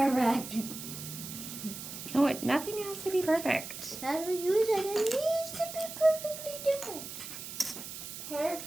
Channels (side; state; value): right; noise; hiss, 10 dB below the sound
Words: No, nothing has to be perfect. That's what you said. It needs to be perfectly different.